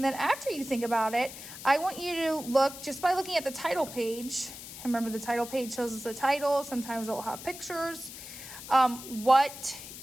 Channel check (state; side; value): noise; left; hiss, 12 dB below the sound